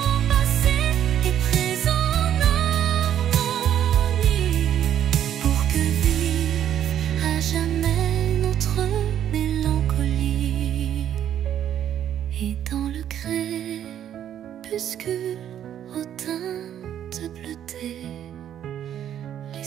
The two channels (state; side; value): quieter; left; 10.4 dB